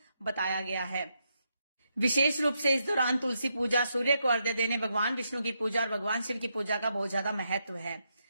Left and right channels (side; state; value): both; inverted; correlation -0.81